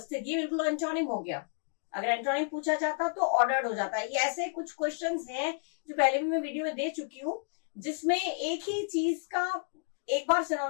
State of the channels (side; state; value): right; silent; digital silence